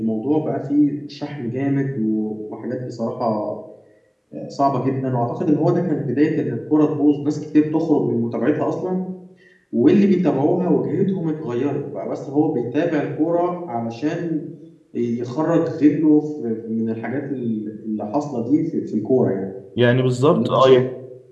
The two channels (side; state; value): both; identical; correlation 1.00